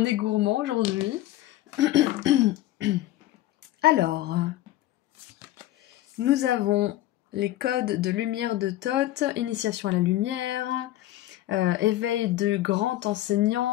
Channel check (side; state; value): right; quieter; 15.0 dB